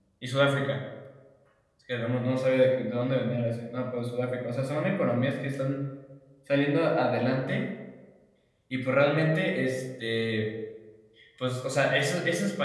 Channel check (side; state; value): both; identical; correlation 1.00